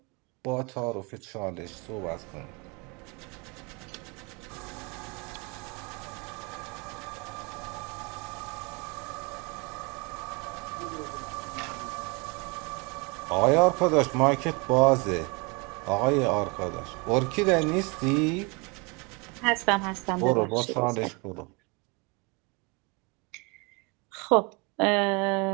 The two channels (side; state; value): left; quieter; 29.6 dB